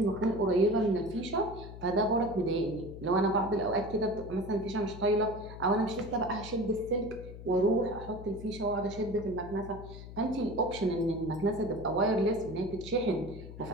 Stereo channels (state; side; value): noise; left; hum, 13 dB below the sound